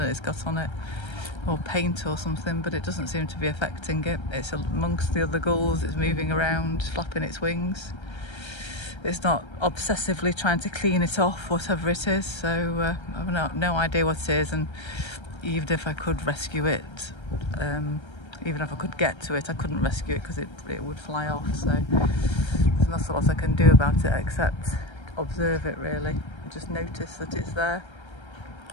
it's got on it, or paint or something, but it doesn't seem to be affecting it. It's amongst the other gulls, it's moving around, flapping its wings. It's not obsessively trying to clean it off, whatever it is, so I've no idea what it is, and even if I could rescue it, even if I could get to it, I couldn't rescue it because it would fly off, so there's not a lot I can do about it except observe it really, and just notice that it's there.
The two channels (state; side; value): late; right; 1.3 ms